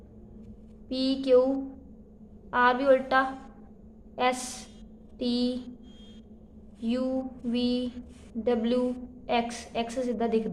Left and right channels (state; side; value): identical; both; correlation 1.00